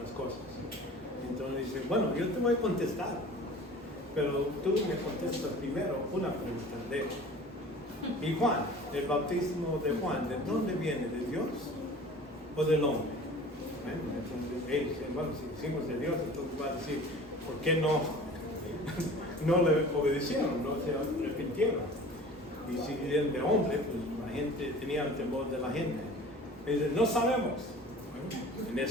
cosas? Entonces dice, bueno, yo te voy a contestar, pero tú me contestas primero una pregunta. ¿Y Juan, el bautismo de Juan, de dónde viene? ¿De Dios o del hombre? Entonces ellos dicen, bueno, si decimos de Dios, entonces va a decir, ¿por qué no le obedecieron, no se arrepintieron? Y si eran de hombre, pues la gente tenía el temor de la gente. Y dicen, no sabemos. Bueno, en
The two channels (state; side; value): normal; both; correlation 0.43